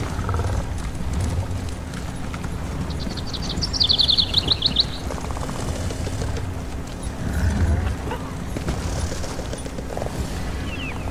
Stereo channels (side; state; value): both; identical; correlation 1.00